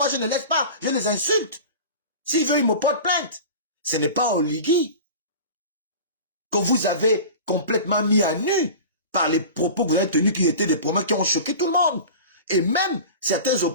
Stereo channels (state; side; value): inverted; both; correlation -0.35